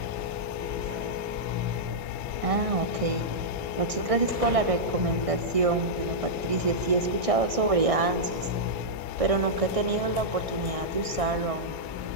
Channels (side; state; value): left; late; 1.6 ms